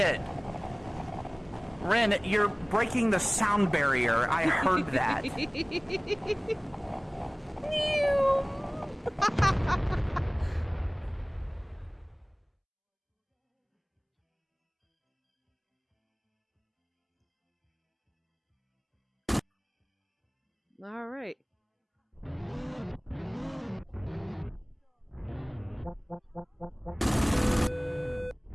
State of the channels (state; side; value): identical; both; correlation 1.00